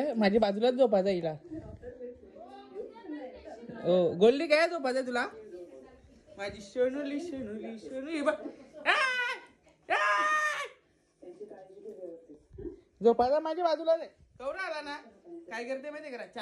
माझ्या बाजूलाच झोपायचा हिला. ओ गोल्डी काय झोपायचा तुला? माझी शनुली शनुली शनुली झोपायचा माझ्या बाजूला नाही. कवरा आला ना, काय करते माहितीये का,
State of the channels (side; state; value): both; identical; correlation 1.00